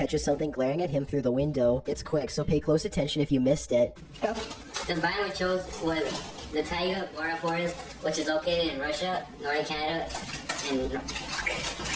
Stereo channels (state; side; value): identical; both; correlation 1.00